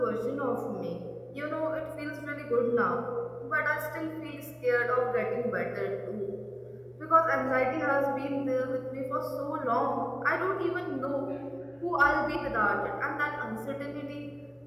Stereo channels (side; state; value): both; identical; correlation 1.00